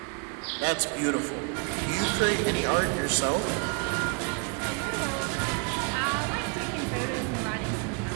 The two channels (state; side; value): quieter; left; 36.2 dB